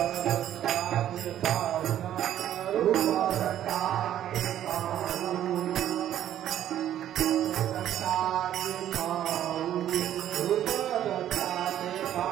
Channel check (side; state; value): left; quieter; 11.4 dB